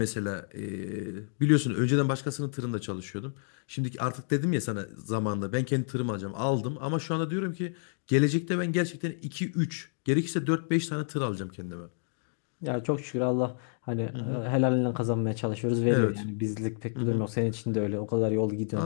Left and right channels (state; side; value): silent; right; digital silence